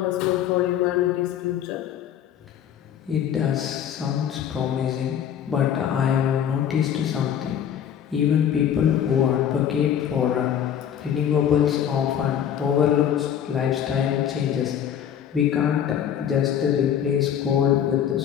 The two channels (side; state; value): right; quieter; 9.3 dB